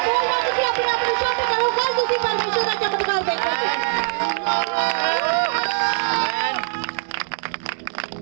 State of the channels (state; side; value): silent; left; 59 dB below the other